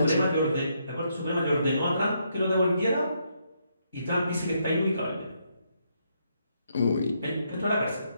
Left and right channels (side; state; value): both; inverted; correlation -0.76